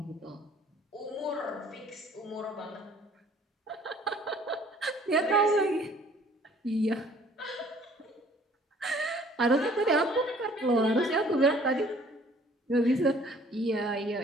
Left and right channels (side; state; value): both; normal; correlation 0.56